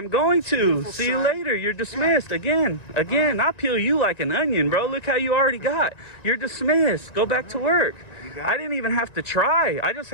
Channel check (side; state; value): right; late; 1.9 ms